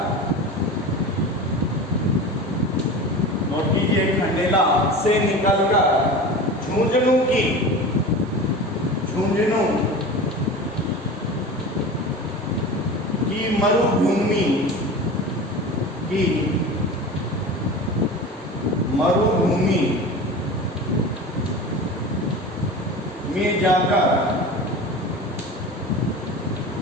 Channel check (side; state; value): both; normal; correlation 0.33